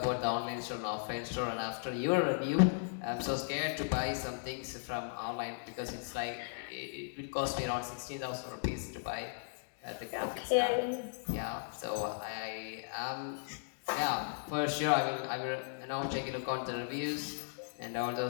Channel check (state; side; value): silent; right; digital silence